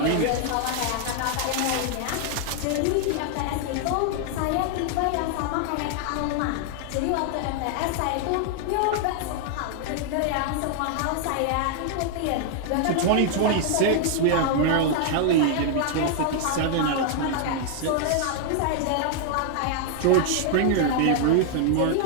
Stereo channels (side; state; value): both; different; correlation 0.00